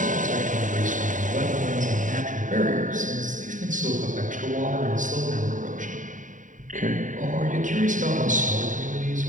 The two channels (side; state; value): left; late; 0.37 ms